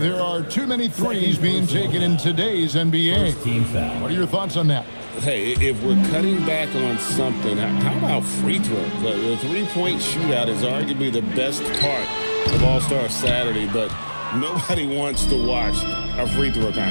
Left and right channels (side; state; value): both; inverted; correlation -1.00